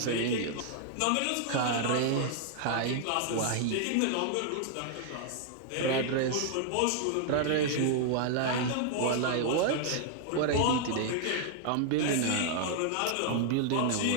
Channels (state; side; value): different; both; correlation 0.00